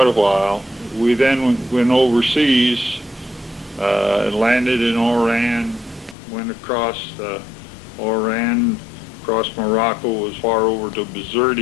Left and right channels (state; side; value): drops out; right; at 6.2 s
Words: a while, we then went overseas, landed in Oran, went across Oran, across Morocco, as far over to